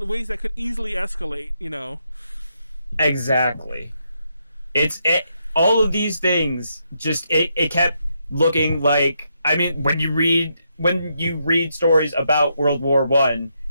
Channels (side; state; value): both; inverted; correlation -0.79